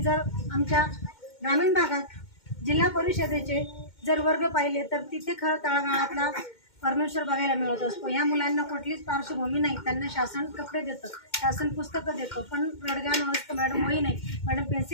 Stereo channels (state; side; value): late; right; 2.1 ms